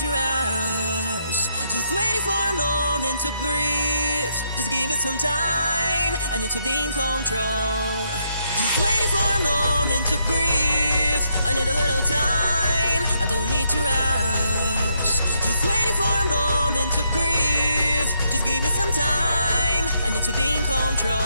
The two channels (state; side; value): inverted; both; correlation -0.76